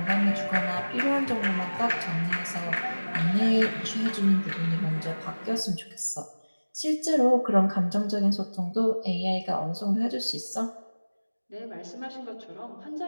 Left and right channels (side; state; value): both; inverted; correlation -1.00